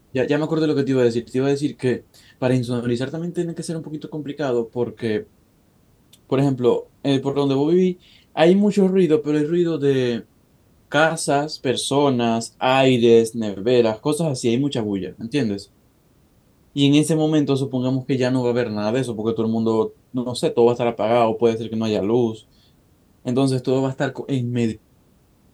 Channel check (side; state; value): both; identical; correlation 1.00